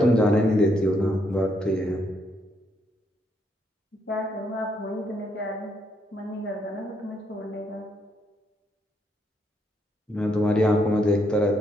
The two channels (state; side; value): normal; both; correlation 0.75